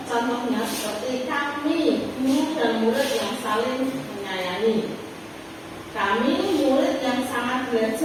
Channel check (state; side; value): identical; both; correlation 1.00